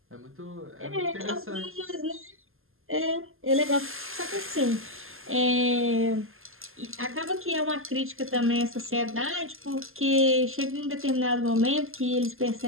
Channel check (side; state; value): left; late; 0.60 ms